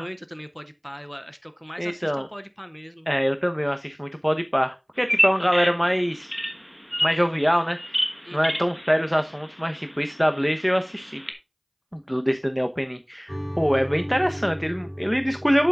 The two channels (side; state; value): both; identical; correlation 1.00